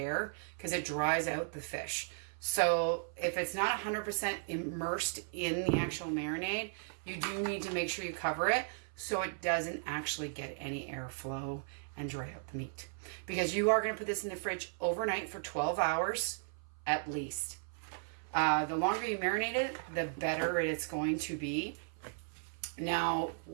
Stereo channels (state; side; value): silent; left; 54 dB below the other